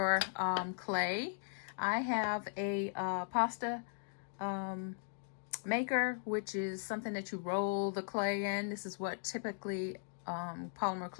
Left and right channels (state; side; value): silent; right; digital silence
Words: clay. I have a pasta maker, which is something that you roll the clay in. This is what typically polymer